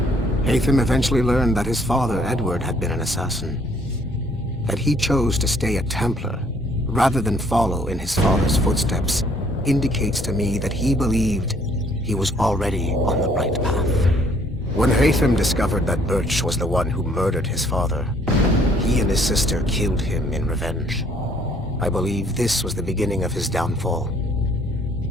Haytham eventually learned that his father, Edward, had been an assassin. That he chose to stay a Templar, rather than follow in his father's footsteps, indicates to me that he believed he was already on the right path. When Haytham discovered that Birch was the one who murdered his father, he and his sister killed him in revenge. I believe this was the beginning of his downfall.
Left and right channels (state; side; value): normal; both; correlation 0.63